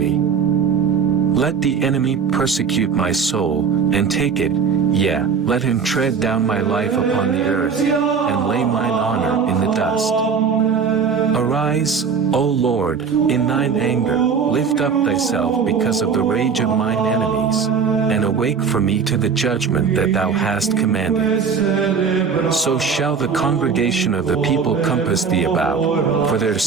Let the enemy persecute my soul, and take it, yea, let him tread down my life upon the earth, and lay mine honor in the dust. Arise, O Lord, in thine anger, lift up thyself because of the rage of mine enemies, and awake for me to the judgment that thou hast commanded. So shall the congregation of the people compass thee about, for their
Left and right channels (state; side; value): quieter; left; 6.0 dB